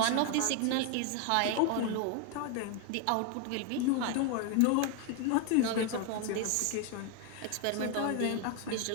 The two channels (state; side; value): different; both; correlation 0.01